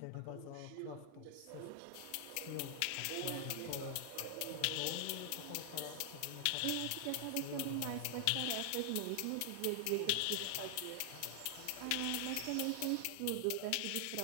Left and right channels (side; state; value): both; different; correlation 0.00